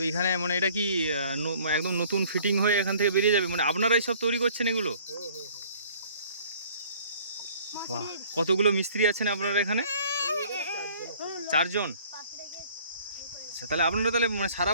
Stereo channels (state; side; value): inverted; both; correlation -0.54